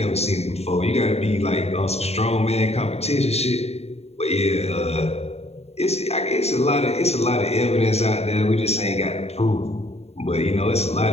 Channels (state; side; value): late; right; 0.30 ms